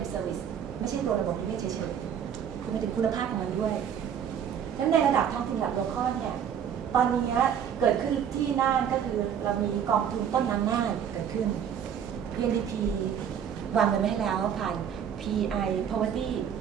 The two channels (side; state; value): left; quieter; 8.5 dB